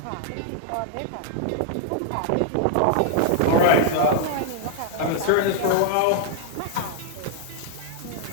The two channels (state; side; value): different; both; correlation 0.00